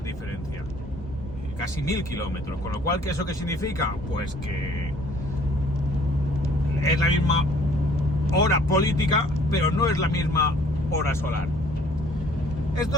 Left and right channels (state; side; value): normal; both; correlation 0.57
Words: diferencia. Casi 1000 kilómetros. Con lo cual, ¿qué eso qué significa? Pues que es la misma hora política, pero no es la misma hora solar.